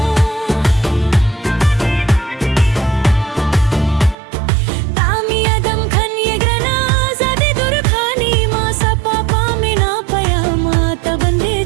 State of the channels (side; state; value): left; drops out; at 4.2 s